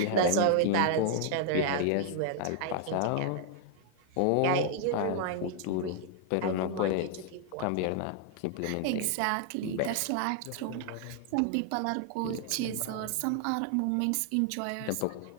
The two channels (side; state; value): both; different; correlation 0.00